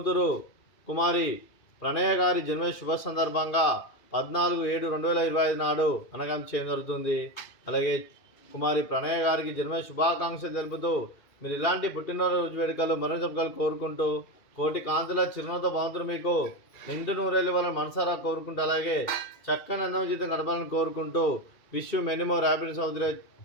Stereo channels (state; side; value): late; right; 2.4 ms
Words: కుమారి ప్రణయ గారి జన్మ శుభ సందర్భంగా 14/7/2025 నాడు అనగాం చేయడం జరుగుతుంది. అలాగే కుమారి ప్రణయ గారికి జన్మ శుభాకాంక్షలు తెలుపుతూ మీరు ఇలాంటి పుట్టినరోజు వేడుకలు మరణ జరుపుకలు కోరుకుంటూ కోటి కాంతుల చిరునవ్వుతో భగవంతుడు మీకు నిండు నూరేళ్ళు వాళ్ళని మనసారా కోరుకుంటూ అలాగే చక్కని అన్నం జీవితం గడపాలని కోరుకుంటూ విష్ మెనీ మోర్ హ్యాపీనెస్ అవుతున్న